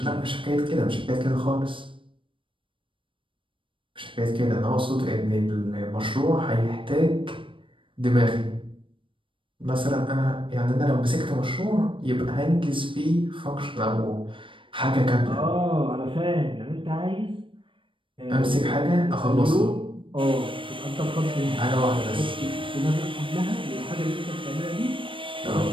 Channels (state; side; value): late; left; 0.25 ms